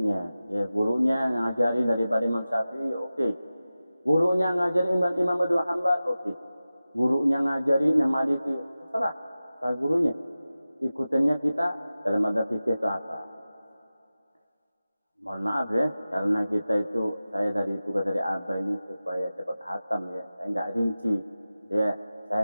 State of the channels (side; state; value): both; inverted; correlation -0.95